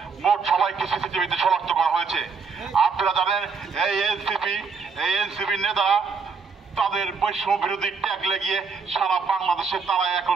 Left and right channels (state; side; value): quieter; left; 5.2 dB